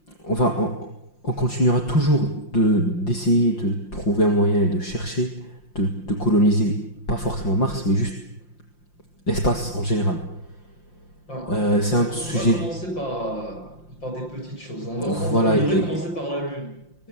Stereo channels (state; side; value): late; right; 5.7 ms